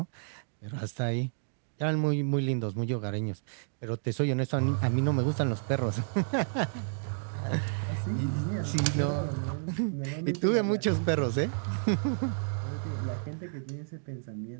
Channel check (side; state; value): left; silent; digital silence